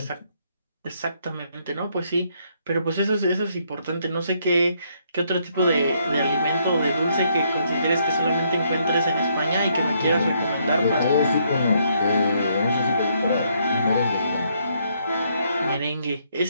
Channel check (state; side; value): inverted; both; correlation -0.72